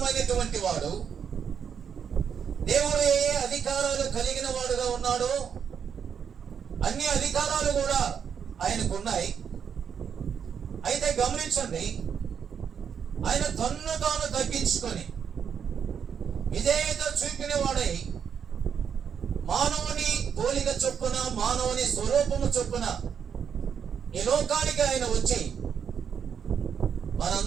వాడు. దేవుడు ఏ అధికారాలు కలిగిన వాడుగా ఉన్నాడో అన్ని అధికారాలు కూడా ఆయనకున్నాయి. అయితే గమనించండి, ఆయన తన్ను తాను తగ్గించుకొని విధేయత చూపిన వాడై మానవుని పోలిక చొప్పున, మానవుని స్వరూపము చొప్పున ఈ లోకానికి ఆయన వచ్చి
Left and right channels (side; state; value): left; quieter; 7.5 dB